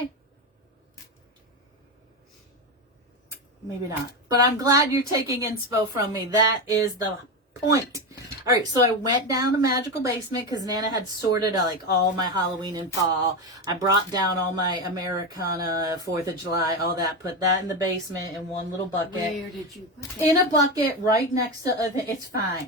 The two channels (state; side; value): normal; both; correlation 0.15